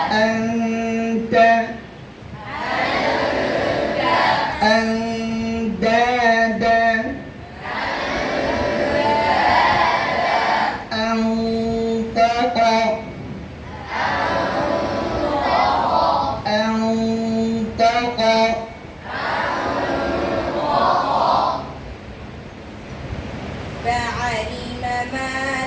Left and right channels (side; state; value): both; identical; correlation 1.00